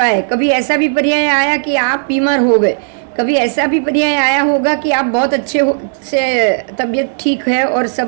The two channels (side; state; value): left; silent; digital silence